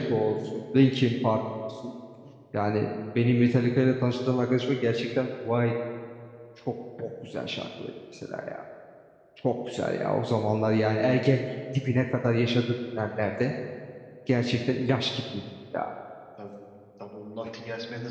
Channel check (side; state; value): both; identical; correlation 1.00